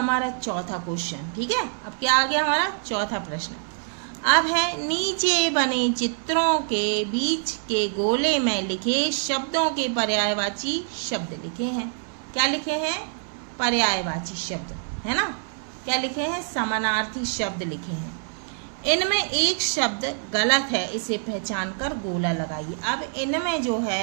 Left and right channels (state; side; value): silent; left; 62 dB below the other